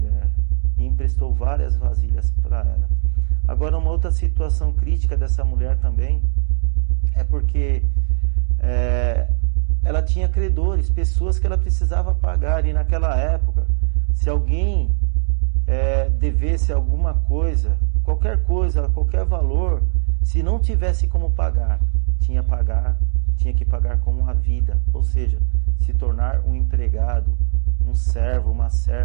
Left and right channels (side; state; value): left; silent; digital silence